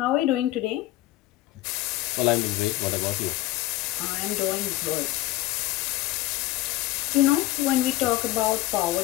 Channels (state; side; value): quieter; right; 16.6 dB